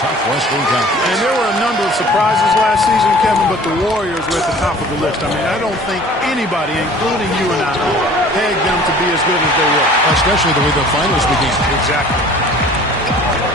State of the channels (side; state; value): both; normal; correlation 0.48